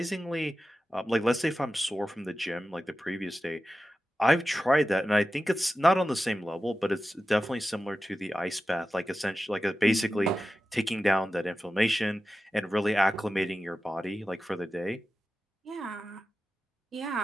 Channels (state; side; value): normal; both; correlation 0.93